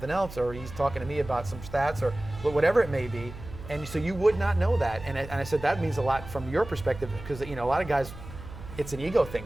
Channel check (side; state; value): right; noise; hum, 14 dB below the sound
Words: else, or he's talking to me about some stats or whatever it may be. And so you would not know that. And I said, that means a lot from your perspective, because a lot of guys, it's an ego